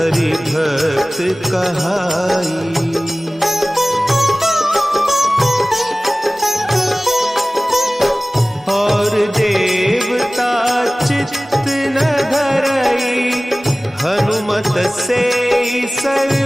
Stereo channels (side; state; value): both; normal; correlation 0.98